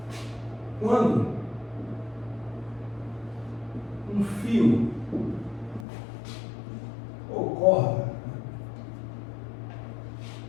quando um fio ou corda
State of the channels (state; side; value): drops out; right; at 5.9 s